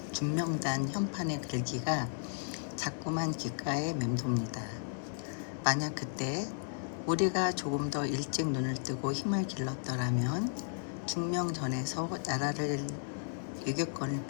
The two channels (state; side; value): silent; right; 55 dB below the other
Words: 현판의 글귀가 자꾸만 귓가에 맴돕니다. 만약 그때 우리가 조금 더 일찍 눈을 뜨고 힘을 길렀더라면 중명전에서 나라를 유교권을